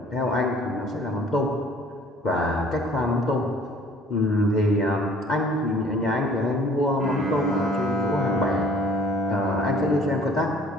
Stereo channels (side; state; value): both; normal; correlation 0.54